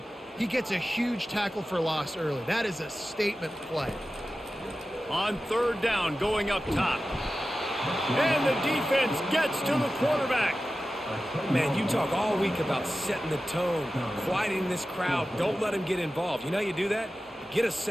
he gets a huge tackle for loss early. That is a statement play. On 3rd down, going up top. And the defense gets to the quarterback. Man, you talk all week about setting the tone, quieting this crowd. Don't let them get involved. You know how you do that? Get a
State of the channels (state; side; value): normal; both; correlation 0.94